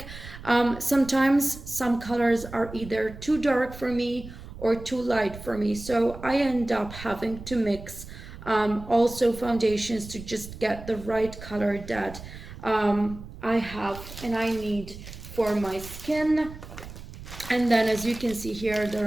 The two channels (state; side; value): noise; right; rumble, 14 dB below the sound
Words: Sometimes some colors are either too dark for me or too light for me, so I end up having to mix also foundations to just get the right color that I have and I need for my skin. And then as you can see here,